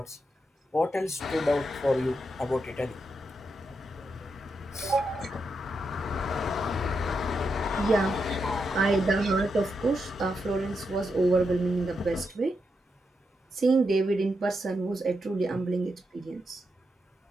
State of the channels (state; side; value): normal; both; correlation 0.84